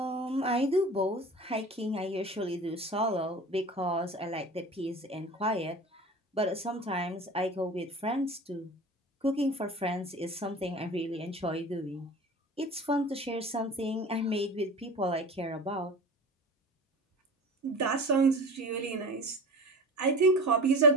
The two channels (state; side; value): normal; both; correlation 0.35